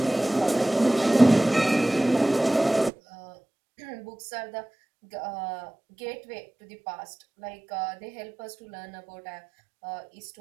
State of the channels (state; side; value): drops out; left; at 2.9 s